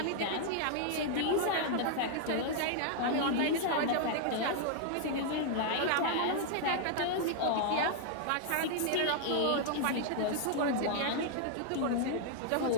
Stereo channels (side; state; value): both; different; correlation 0.00